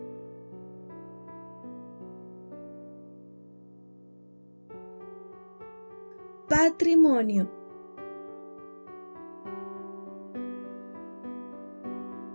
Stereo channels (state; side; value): inverted; both; correlation -1.00